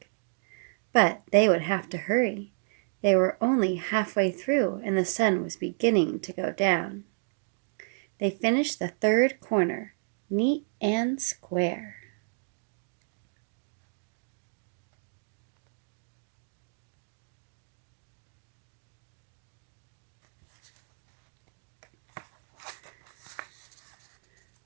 But they would have to hurry. They were only halfway through and the sun was beginning to go down. They finished the third corner, neat and square.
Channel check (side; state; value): left; silent; digital silence